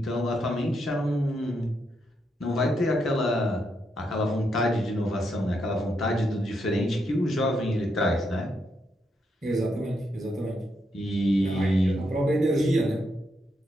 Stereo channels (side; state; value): both; normal; correlation 0.80